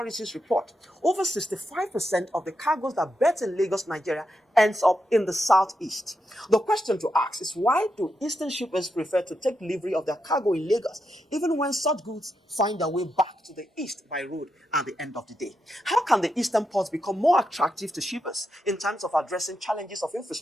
report, over 65% of the cargoes that berth in Lagos, Nigeria, ends up in the southeast. The question to ask is, why do eastern shippers prefer to take delivery of their cargo in Lagos, even when such goods find their way back to the east by road at the end of the day? How can the eastern ports become more attractive to shippers in terms of addressing challenges of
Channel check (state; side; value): normal; both; correlation 0.84